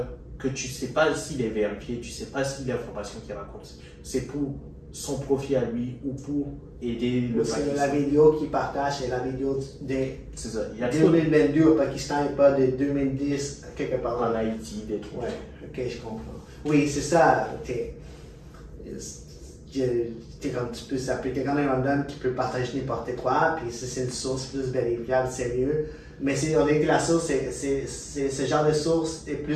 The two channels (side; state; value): both; identical; correlation 1.00